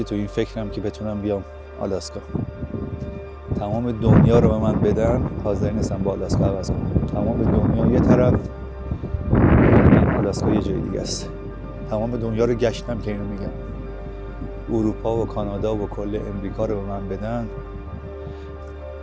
تو این فکرم که بتونم بیام آلاسکا. تمام دنیا رو به من بدن حاضر نیستم با آلاسکا عوض کنم. تمام دنیا یه طرف، آلاسکا یه جای دیگه است. تمام دنیا رو گشتم که اینو میگم. اروپا و کانادا و کل امریکا رو به من بدن،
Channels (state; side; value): identical; both; correlation 1.00